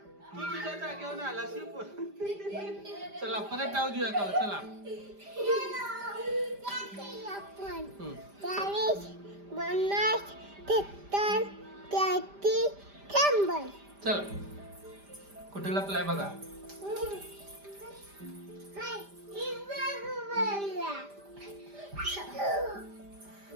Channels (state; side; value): late; left; 5.0 ms